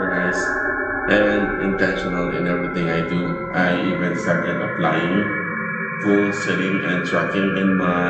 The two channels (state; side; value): identical; both; correlation 1.00